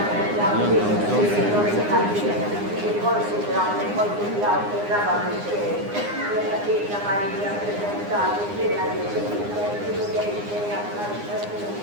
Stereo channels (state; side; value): late; left; 9.7 ms